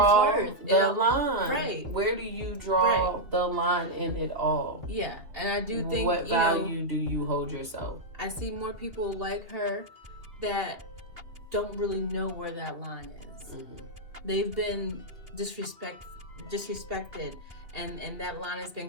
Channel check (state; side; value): late; left; 2.7 ms